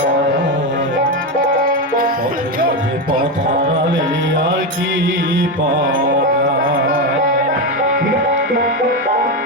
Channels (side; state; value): both; normal; correlation 0.12